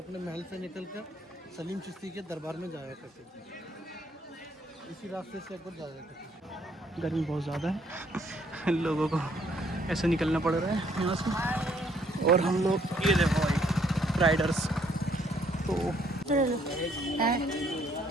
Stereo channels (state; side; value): normal; both; correlation 0.66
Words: महल से निकल कर सलीम चिश्ती के दरबार में जाया करते थे। इसी रास्ते से अकबर जाया करते थे। गर्मी बहुत ज़्यादा है लोगों को ऐसे निकलना पड़ रहा है यहाँ से। और हम लोग ये देखो भाई राइडर्स तो